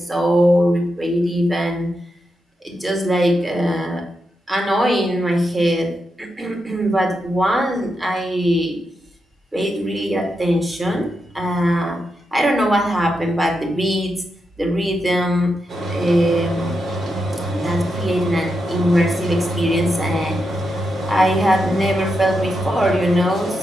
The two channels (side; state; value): both; normal; correlation 0.86